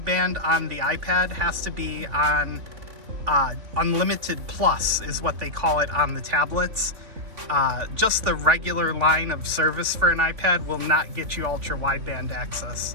on the iPad has to be on Unlimited Plus, is what they call it on the tablets. Just the regular line of service for an iPad will not get you Ultra Wideband access.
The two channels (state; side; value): late; left; 3.4 ms